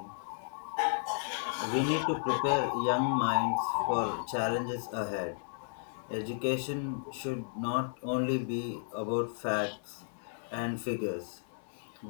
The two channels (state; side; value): silent; right; digital silence